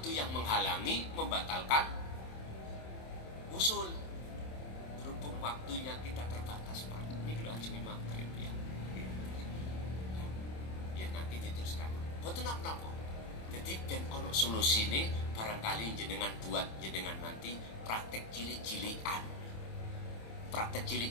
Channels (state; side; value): late; right; 27 ms